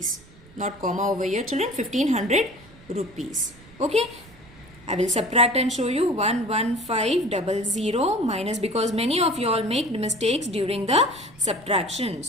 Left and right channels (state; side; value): noise; right; rumble, 23 dB below the sound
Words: Not comma over here, children. 1,500 rupees. Okay, I will subtract and show you 11500 minus, because many of you all make mistakes during the subtraction.